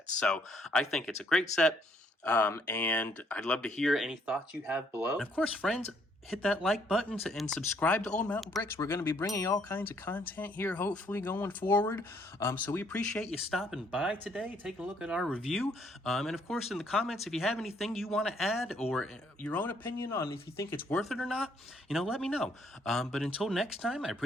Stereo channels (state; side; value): normal; both; correlation 0.67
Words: So I think it's a great set. And I'd love to hear any thoughts you have below. And of course, friends, hit that like button and subscribe to Old Mountain Bricks. We're going to be bringing all kinds of content here, hopefully, going forward. So we appreciate you stopping by today, taking a look at our review. And of course, in the comments, if you have anything you want to add or your own opinion on if you think it's worth it or not, let me know. But until next time, I